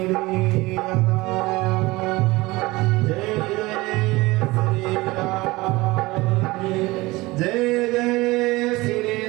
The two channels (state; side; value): quieter; left; 21.2 dB